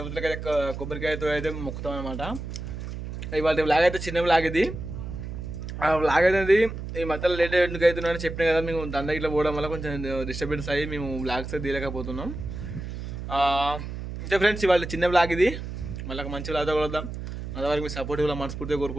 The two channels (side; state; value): right; noise; hum, 7 dB below the sound